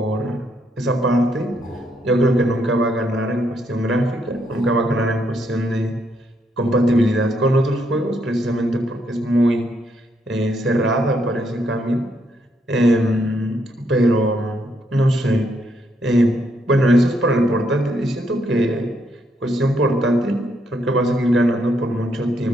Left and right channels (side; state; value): both; normal; correlation 0.75